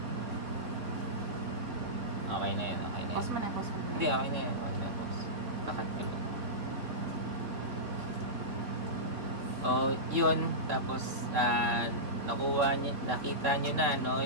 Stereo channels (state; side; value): late; left; 3.6 ms